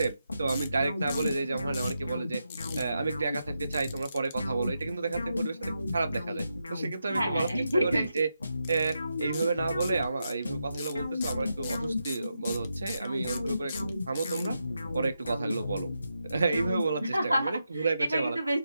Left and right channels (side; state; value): both; inverted; correlation -0.86